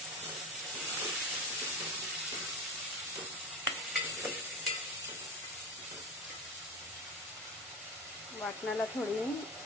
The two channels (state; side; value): normal; both; correlation 0.24